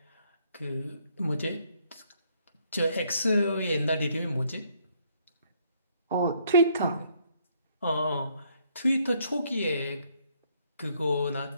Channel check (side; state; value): both; inverted; correlation -0.68